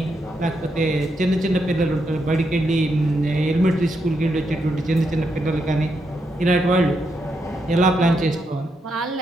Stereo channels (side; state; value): both; normal; correlation 0.81